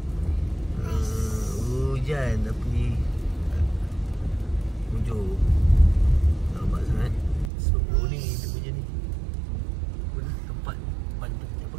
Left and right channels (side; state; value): left; drops out; at 7.5 s